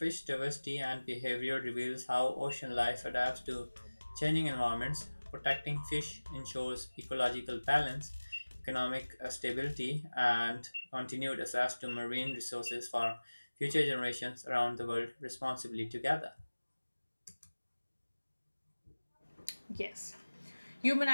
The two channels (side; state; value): both; inverted; correlation -1.00